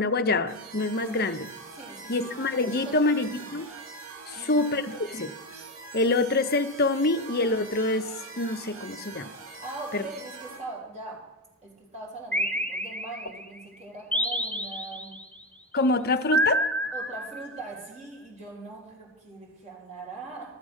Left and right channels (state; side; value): normal; both; correlation 0.13